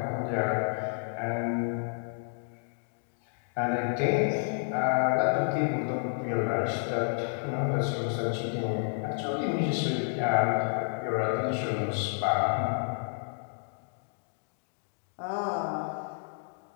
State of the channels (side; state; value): right; silent; digital silence